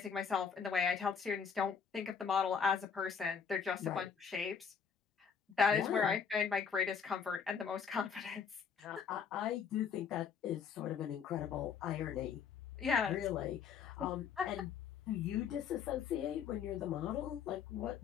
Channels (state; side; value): quieter; right; 6.8 dB